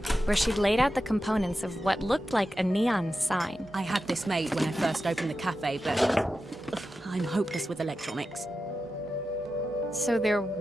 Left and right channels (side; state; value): both; normal; correlation 0.91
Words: where she'd laid out the components of what looked like a neon sign. I had this made when I first opened the cafe, but I'm hopeless with electronics. So there